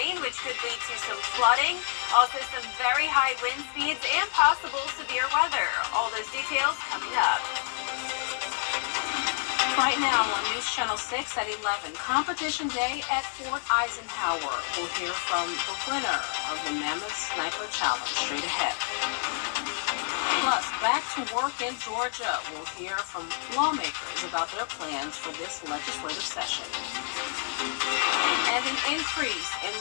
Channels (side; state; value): right; silent; 59 dB below the other